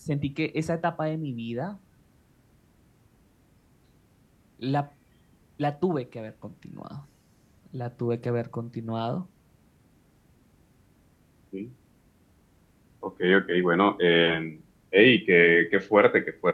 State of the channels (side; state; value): both; identical; correlation 1.00